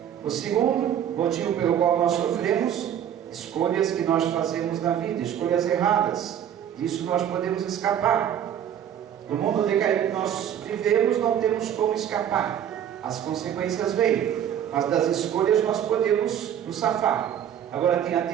O segundo motivo pelo qual nós sofremos, escolhas que nós fazemos na vida, escolhas erradas. Disso nós podemos escapar. No mundo decaído que nós vivemos, não temos como escapar. As consequências vêm, mas das escolhas nós podemos nos safar. Agora tem a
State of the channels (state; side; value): quieter; left; 9.7 dB